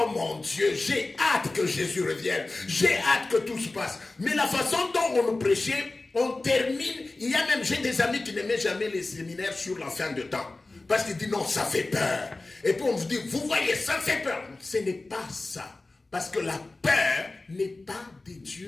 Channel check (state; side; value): quieter; right; 3.2 dB